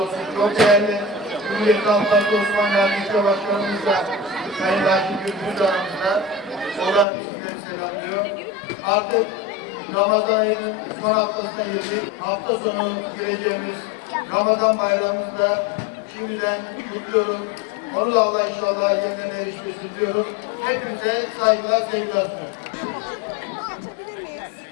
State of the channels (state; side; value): drops out; right; at 7.1 s